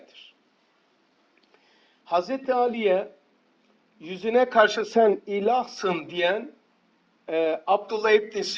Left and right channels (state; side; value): identical; both; correlation 1.00